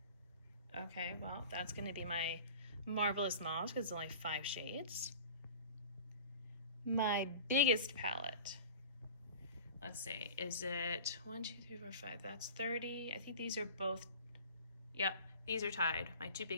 Okay, well, that's gonna be my Marvelous Mauve because it's only 5 shades. My biggest palette. Let's see, is it 1, 2, 3, 4, 5? That's 30. I think these are both, yep, these are tied. My 2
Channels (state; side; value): inverted; both; correlation -0.39